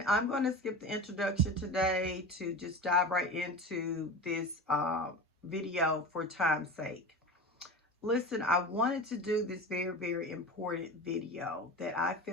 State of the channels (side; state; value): both; normal; correlation 0.30